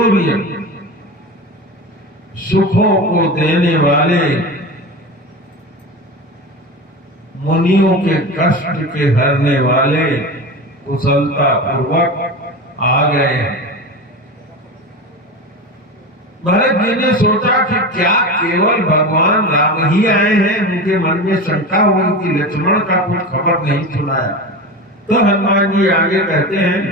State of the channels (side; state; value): both; normal; correlation 0.26